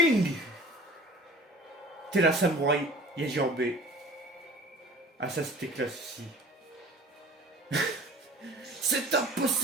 T'es la samouraï Yajirbe. Ah ça c'était classe aussi. C'est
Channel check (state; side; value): normal; both; correlation 0.45